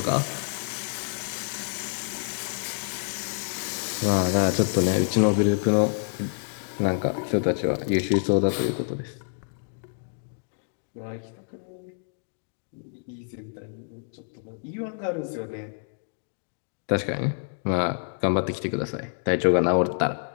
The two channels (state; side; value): silent; right; digital silence